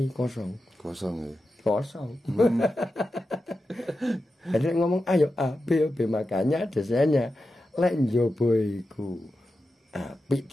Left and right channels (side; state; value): both; normal; correlation 0.91